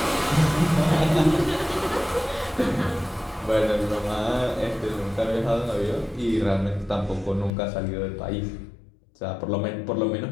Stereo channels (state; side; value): drops out; right; at 7.5 s